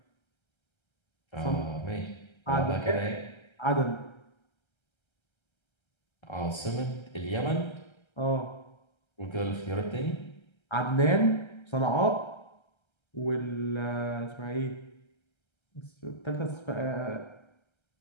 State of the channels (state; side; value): late; right; 1.3 ms